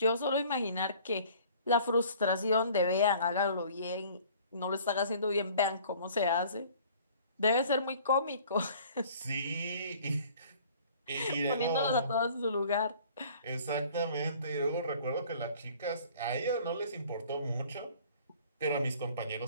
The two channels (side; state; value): both; inverted; correlation -0.52